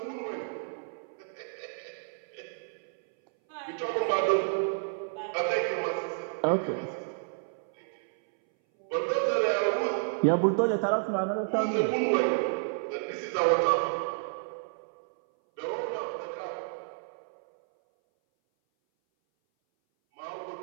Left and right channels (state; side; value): silent; left; 58 dB below the other